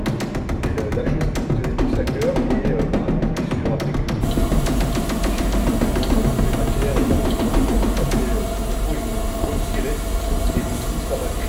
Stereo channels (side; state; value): both; identical; correlation 1.00